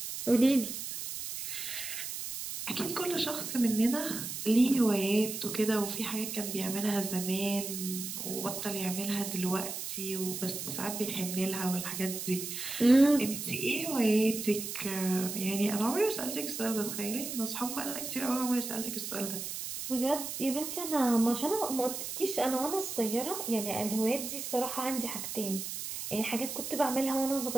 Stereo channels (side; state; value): right; noise; hiss, 6 dB below the sound